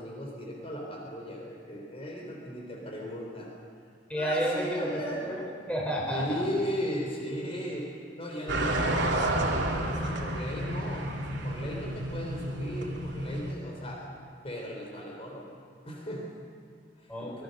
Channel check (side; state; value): both; normal; correlation 0.43